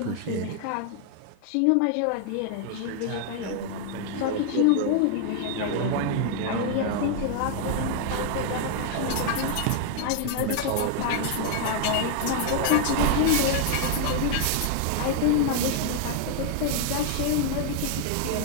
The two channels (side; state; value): both; different; correlation 0.00